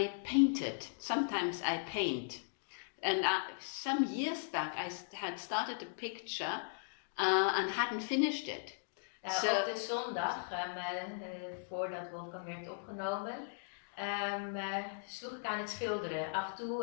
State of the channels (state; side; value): silent; right; digital silence